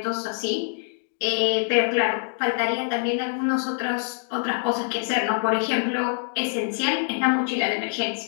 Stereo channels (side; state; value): right; silent; digital silence